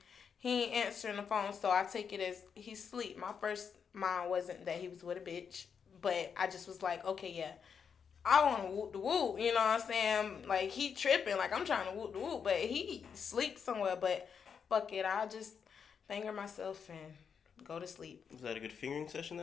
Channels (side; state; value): right; quieter; 6.7 dB